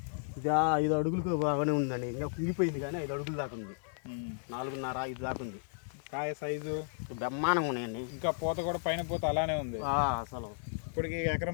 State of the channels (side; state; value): right; silent; 55 dB below the other